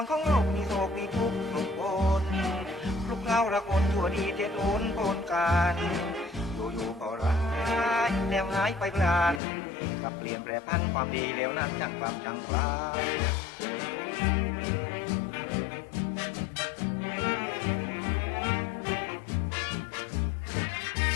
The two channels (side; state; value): right; drops out; at 9.4 s